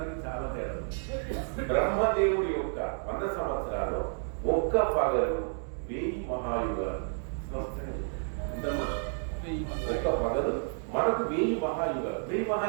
చాలా తేడా. బ్రహ్మదేవుడి యొక్క 100 సంవత్సరాలు ఒక్క పగలు 1000 మహాయుగాలు. ఒక్క పగలు మనకు 1000 మహాయుగాలు. 1000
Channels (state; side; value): silent; left; 57 dB below the other